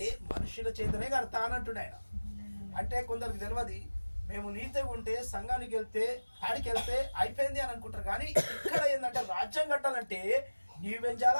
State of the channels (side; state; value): both; inverted; correlation -1.00